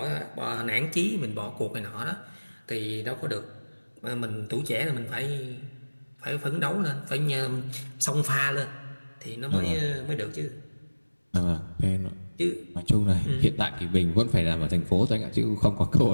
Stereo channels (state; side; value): inverted; both; correlation -1.00